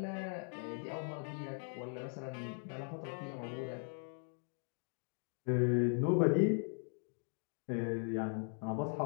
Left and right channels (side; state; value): right; silent; 52 dB below the other